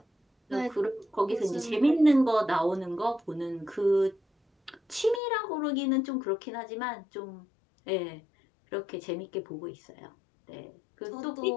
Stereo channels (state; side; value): drops out; right; at 5.2 s